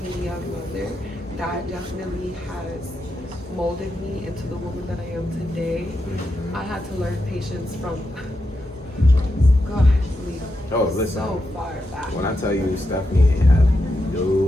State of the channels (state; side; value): normal; both; correlation 0.85